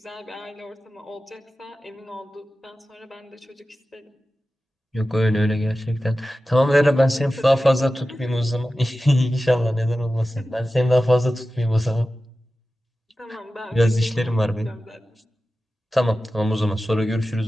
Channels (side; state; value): both; normal; correlation 0.94